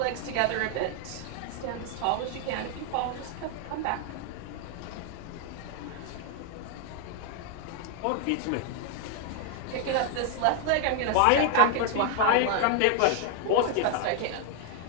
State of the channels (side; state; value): both; different; correlation 0.00